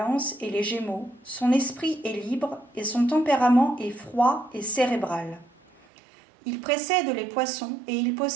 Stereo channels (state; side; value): drops out; left; at 5.9 s